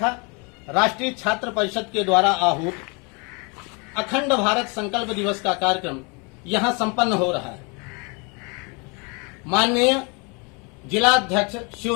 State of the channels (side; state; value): right; quieter; 31.3 dB